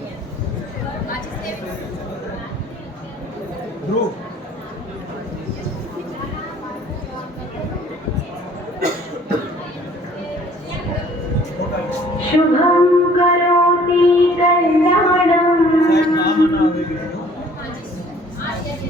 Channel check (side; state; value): both; normal; correlation 0.55